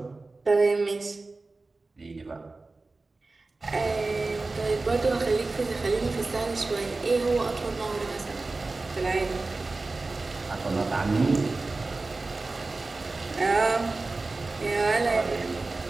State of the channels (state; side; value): quieter; left; 3.5 dB